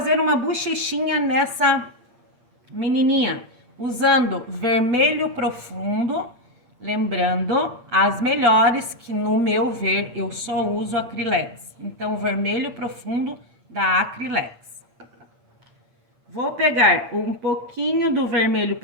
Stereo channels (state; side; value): late; left; 8.6 ms